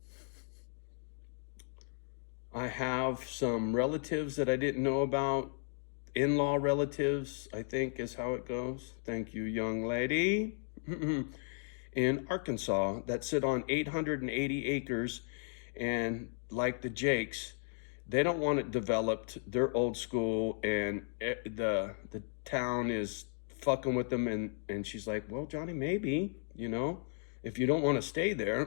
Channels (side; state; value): right; silent; digital silence